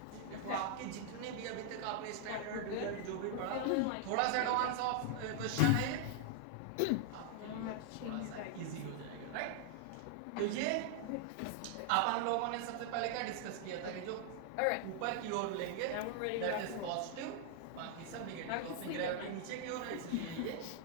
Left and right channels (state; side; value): different; both; correlation 0.00